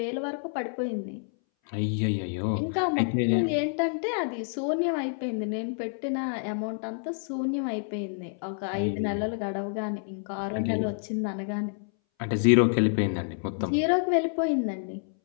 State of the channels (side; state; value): right; silent; 59 dB below the other